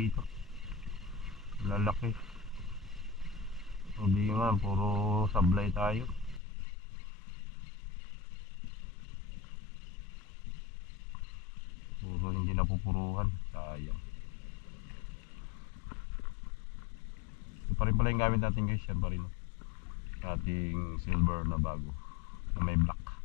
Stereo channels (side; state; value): right; drops out; at 6.4 s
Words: Lalaki. Hindi nga, puro sablay tayo. Puro hindi napupuruhan. Sayang. Ito pa rin pala yung gamit natin guys. Yan pa rin. Ating silver na bago. Na may black.